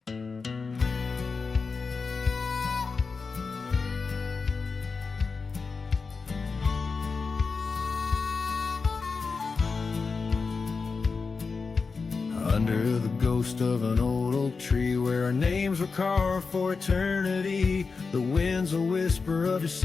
Under the ghost of an old oak tree where our names were carved for eternity, the wind's a whisper of your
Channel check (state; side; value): quieter; right; 4.7 dB